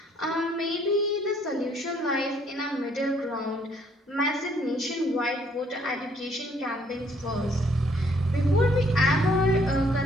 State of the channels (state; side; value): normal; both; correlation 0.65